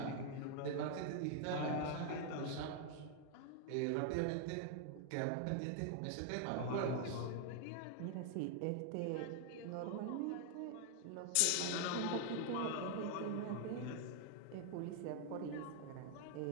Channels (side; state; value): both; different; correlation 0.00